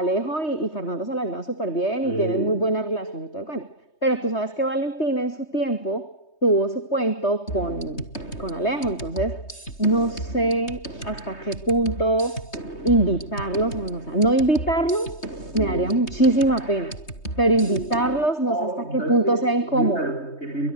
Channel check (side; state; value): right; late; 3.2 ms